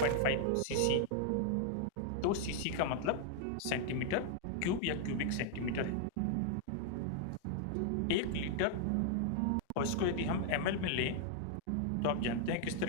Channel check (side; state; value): both; different; correlation 0.00